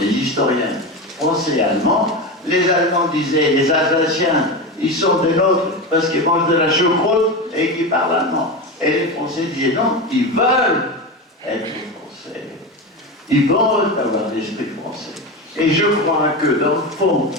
historiens français et allemands, les Allemands disaient, les Alsaciens, ils sont des nôtres parce qu'ils mangent de la choucroute et qu'ils parlent allemand. Et les Français disaient non, ils veulent être français. Ils veulent avoir l'esprit français. Et je crois que, dans le fond,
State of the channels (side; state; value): both; normal; correlation 0.20